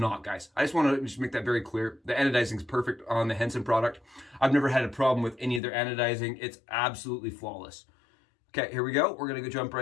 guys. I just want to just make that very clear. The anodizing is perfect on the Henson product. I've never had a problem with any of their anodizing. It's absolutely flawless. Okay, here we go. We're gonna go jump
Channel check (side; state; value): right; drops out; at 5.6 s